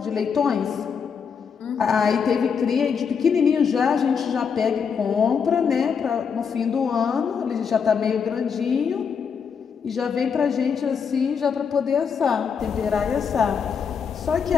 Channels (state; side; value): quieter; right; 6.5 dB